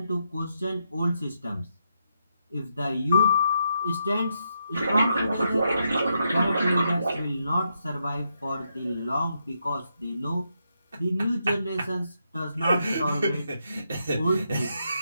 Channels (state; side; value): inverted; both; correlation -0.81